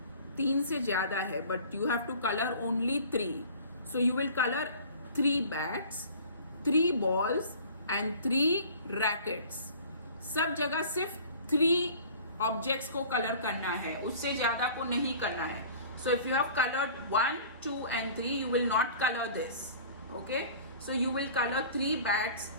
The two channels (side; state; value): both; inverted; correlation -0.45